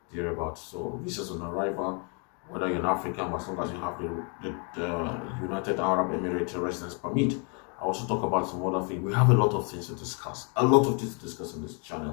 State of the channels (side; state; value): right; quieter; 37.0 dB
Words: thereabout. So visas on arrival, whether you're an African, as long as you have the United Arab Emirates residence permit. I also talk about some other things. We have a lot of things to discuss. A lot of things to discuss on this